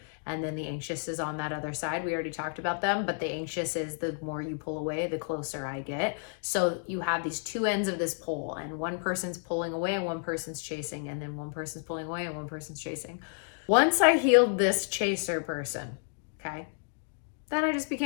And then the anxious is on that other side. We already talked about them, but the anxious is the more you pull away, the closer I get. So you have these two ends of this pole, and one person's pulling away and one person's chasing, and then one person's pulling away and one person's chasing. Once I healed this chaser person, okay, Then I just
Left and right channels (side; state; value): right; silent; 57 dB below the other